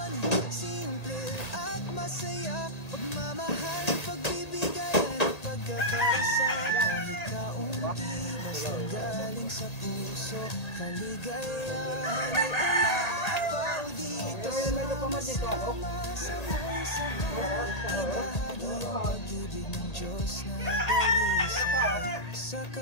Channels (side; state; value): right; late; 1.8 ms